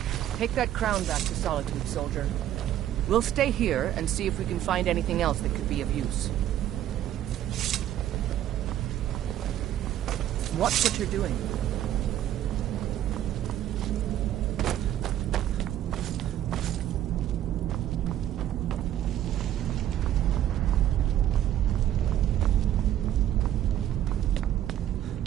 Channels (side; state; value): left; quieter; 11.9 dB